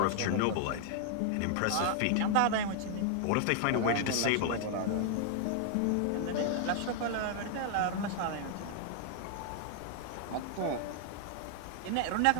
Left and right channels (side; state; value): both; different; correlation 0.00